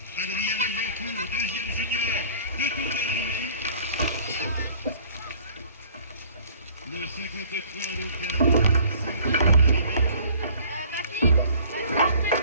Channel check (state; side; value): inverted; both; correlation -0.51